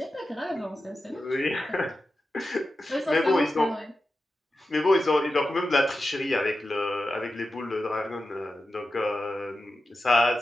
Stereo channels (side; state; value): both; normal; correlation 0.92